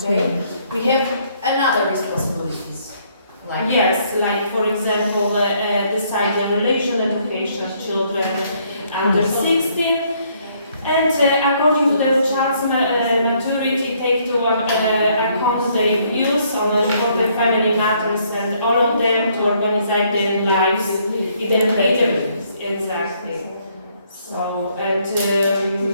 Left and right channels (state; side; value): inverted; both; correlation -0.67